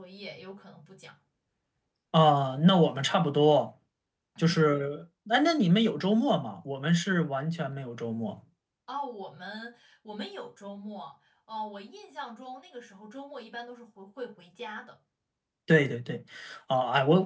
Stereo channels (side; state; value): both; identical; correlation 1.00